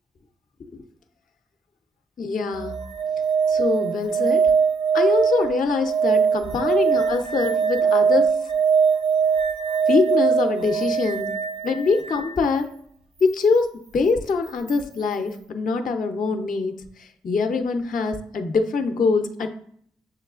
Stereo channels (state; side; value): normal; both; correlation 0.68